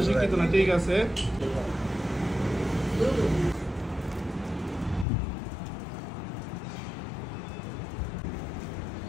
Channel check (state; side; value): drops out; right; at 5.1 s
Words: না, ঠিক আছে।